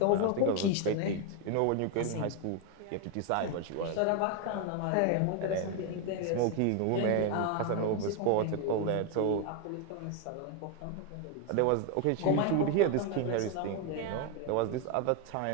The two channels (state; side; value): different; both; correlation 0.01